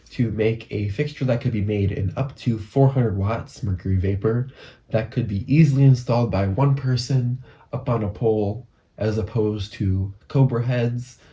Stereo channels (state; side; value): identical; both; correlation 1.00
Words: to make a fixture that could be made in up to 400 watts mercury vapor that could be easily installed by one person up on a pole, as opposed to Cobra heads,